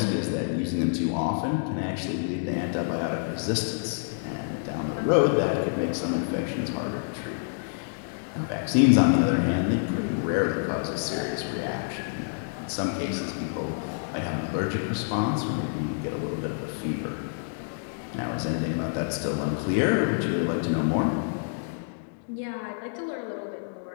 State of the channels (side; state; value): right; silent; digital silence